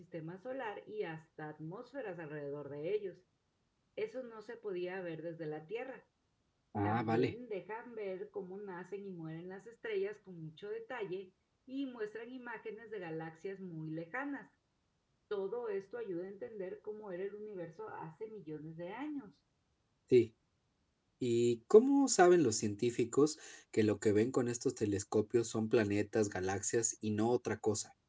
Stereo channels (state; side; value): identical; both; correlation 1.00